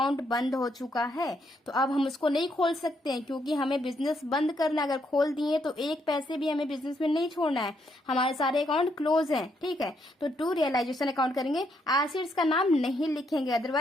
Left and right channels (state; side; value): normal; both; correlation 0.75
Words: बंद हो चुका है, तो अब हम उसको नहीं खोल सकते हैं, क्योंकि हमें बिजनेस बंद करना है। अगर खोल दिए तो एक पैसे भी हमें बिजनेस में नहीं छोड़ना है, हमारे सारे अकाउंट क्लोज हैं, ठीक है। तो टू रियलाइजेशन अकाउंट करेंगे, एसेट्स का नाम नहीं लिखेंगे,